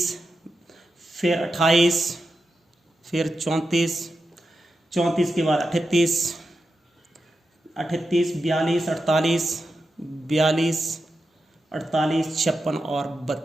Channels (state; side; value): normal; both; correlation 0.89